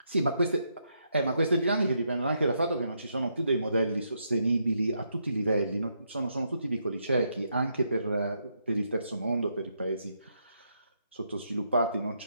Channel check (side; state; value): both; inverted; correlation -0.78